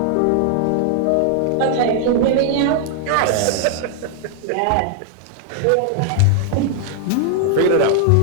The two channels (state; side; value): different; both; correlation 0.00